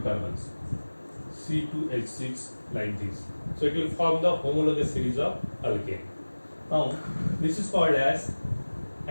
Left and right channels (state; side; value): inverted; both; correlation -1.00